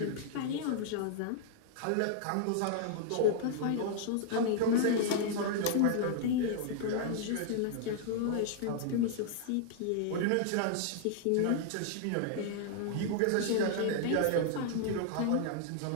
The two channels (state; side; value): different; both; correlation -0.01